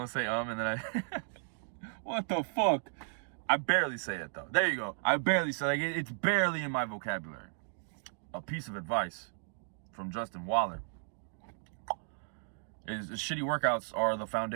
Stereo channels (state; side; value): silent; left; digital silence